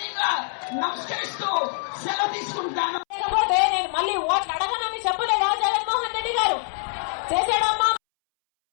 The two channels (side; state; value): right; silent; 62 dB below the other